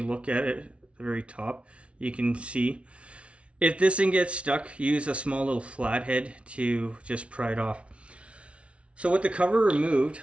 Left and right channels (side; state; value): left; late; 0.061 ms